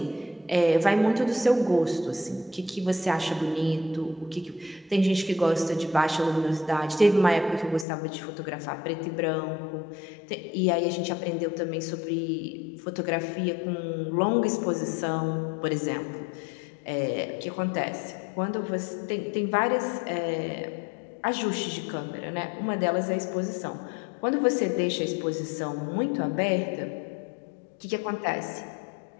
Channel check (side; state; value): right; drops out; at 7.9 s